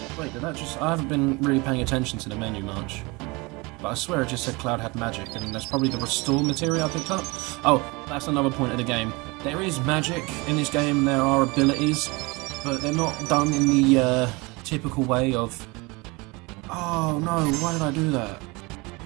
Wait, did that just... I haven't been really paying attention to the menu much. But I swear it just said Cloud had magic, and that's probably the restore material I picked up. Oh, that's another point of the game. There is magic in this game, there are abilities, but they're not done in the typical way of... Oh no, why did I do that?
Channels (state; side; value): quieter; left; 25.8 dB